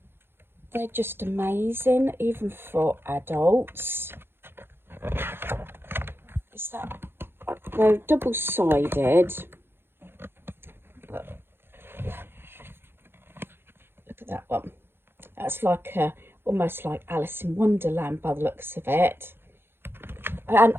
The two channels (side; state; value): left; late; 0.11 ms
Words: they're just amazing even for adults. Is that, they're double-sided, but look at that one. That's like a almost like Alice in Wonderland by the looks of it. And